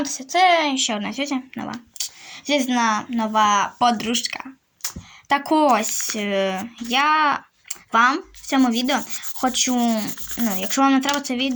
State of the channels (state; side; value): identical; both; correlation 1.00